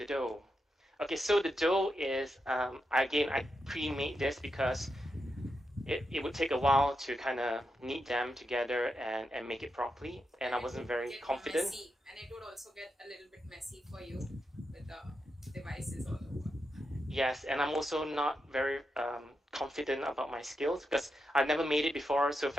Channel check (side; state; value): both; normal; correlation 0.86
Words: Okay, so the dough is, again, I pre-made this because it would take a while to kind of knead them together and make it properly, and I wasn't very confident. Messy, and it would also get a little bit messy for you with the devices all over. Yes, and I'm also not very confident about my skills because I've never made it before. So